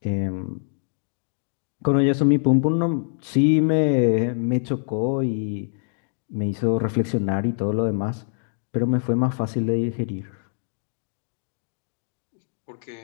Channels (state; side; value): silent; right; digital silence